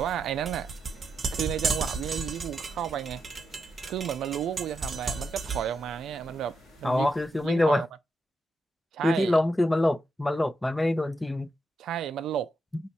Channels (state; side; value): normal; both; correlation 0.84